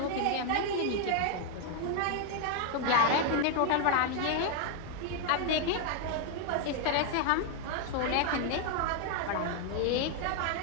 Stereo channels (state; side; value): different; both; correlation 0.00